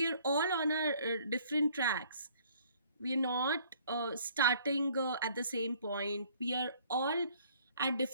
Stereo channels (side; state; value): both; inverted; correlation -0.58